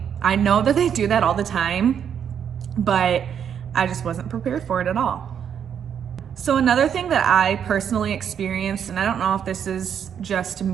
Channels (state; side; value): quieter; left; 8.3 dB